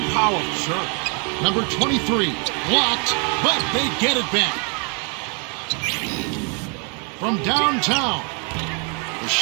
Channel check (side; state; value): left; quieter; 36.8 dB